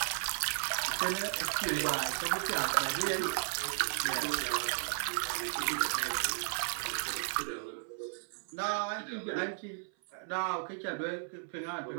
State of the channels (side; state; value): left; silent; 55 dB below the other